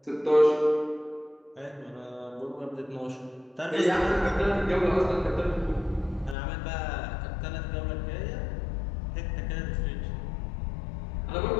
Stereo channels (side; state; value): right; drops out; at 6.4 s